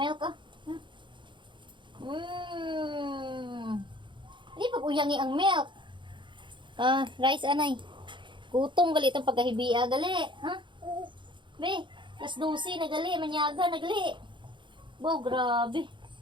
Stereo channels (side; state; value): left; late; 0.23 ms